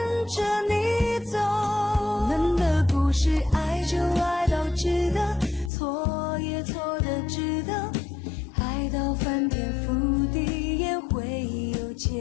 着你走。我们的故事，爱就爱到值得，错也错的值得，爱到翻天覆地也会有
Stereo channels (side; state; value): right; drops out; at 5.7 s